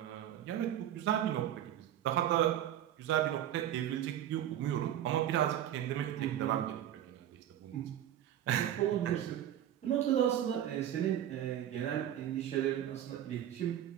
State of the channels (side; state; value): left; quieter; 11.3 dB